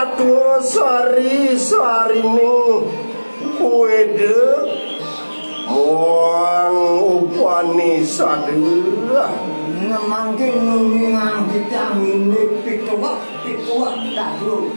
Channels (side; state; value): both; inverted; correlation -1.00